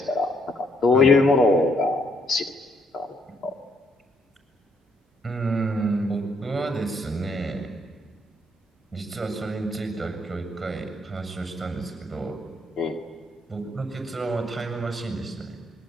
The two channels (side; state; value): both; normal; correlation 0.71